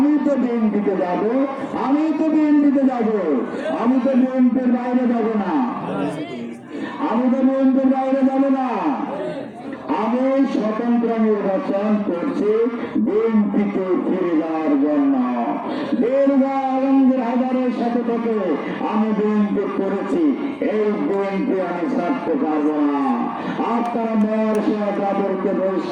তো বিএনপিতে যাব, আমি তো বিএনপিতে যাব, আমি তো বিএনপির বাইরে যাব না, আমি তো বিএনপির বাইরে যাব না। আমি স্বতন্ত্র নির্বাচন করছি বিএনপিতে ফিরে যাওয়ার জন্য। দীর্ঘ আলমগীর হাজারের সাথে থেকে আমি বিএনপি করেছি, এই বিএনপি আমি ছাড়তে পারবো না। আপনারা মেয়র সাহেব তাদেরকে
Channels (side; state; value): both; identical; correlation 1.00